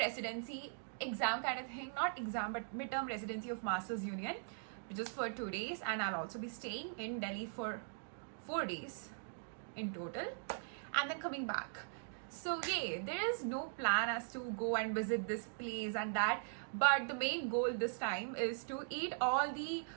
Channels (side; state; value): left; silent; digital silence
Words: exam kind of thing, not exam, but midterm residency of Masters Union, which is for 2 days. And I'll also be staying in Delhi for 4 days in total, and then coming back. So yeah, there is no plan as to go and visit this place and that, but the main goal this time is to eat all the